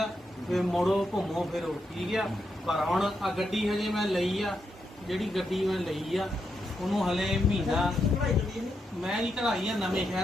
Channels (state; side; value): normal; both; correlation 0.83